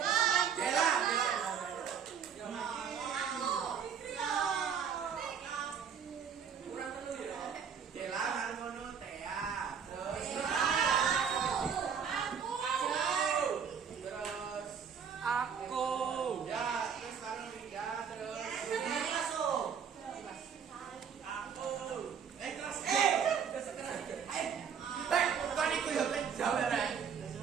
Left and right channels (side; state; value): left; quieter; 7.1 dB